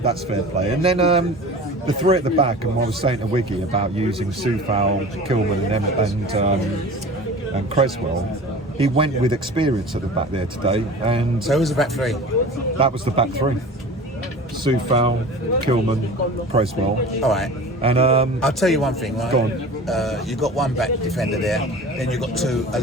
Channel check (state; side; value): normal; both; correlation 0.38